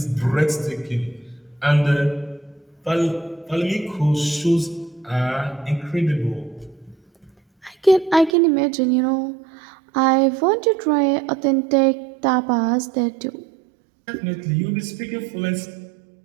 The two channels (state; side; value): drops out; left; at 8.3 s